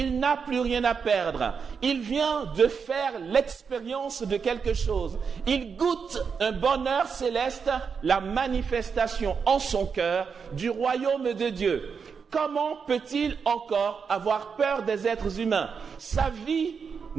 n'a plus rien à perdre. Il vient de faire l'expérience de quelque chose. Il goûte un bonheur céleste, la manifestation en son cœur du royaume de Dieu. Comment peut-il encore avoir peur des êtres humains? Sa vie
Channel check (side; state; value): left; quieter; 6.0 dB